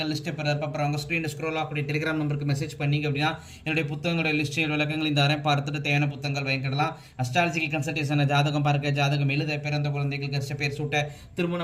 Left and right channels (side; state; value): both; identical; correlation 1.00